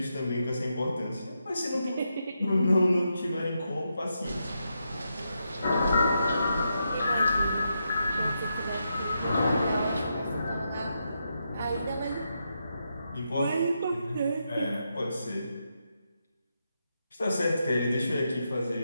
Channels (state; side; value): inverted; both; correlation -0.84